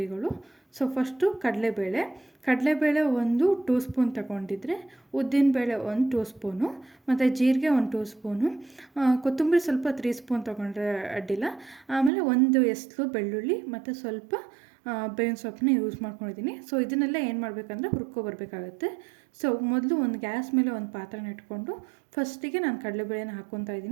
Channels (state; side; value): drops out; left; at 12.1 s